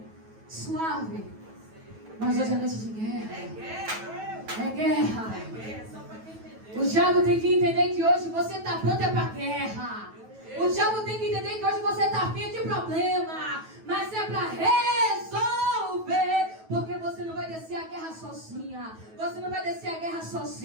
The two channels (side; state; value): left; late; 9.2 ms